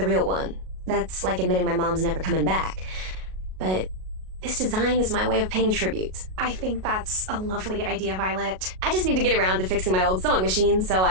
real one. That's like admitting my mom's never coming back. But this design is my way of paying tribute. I think that's a lovely idea, Violet. I just need to get around to fixing my old sewing machine so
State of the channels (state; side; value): late; left; 38 ms